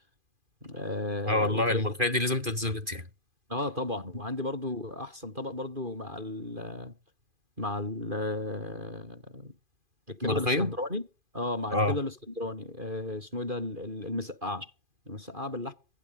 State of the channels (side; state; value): left; late; 2.4 ms